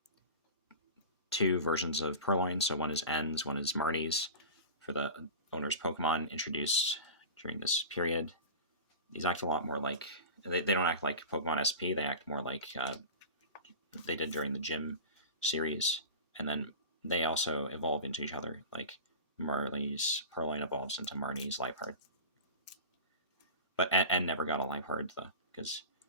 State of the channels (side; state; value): both; inverted; correlation -0.32